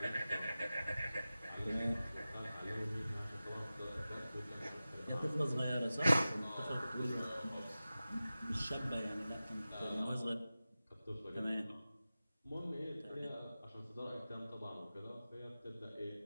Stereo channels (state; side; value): inverted; both; correlation -0.95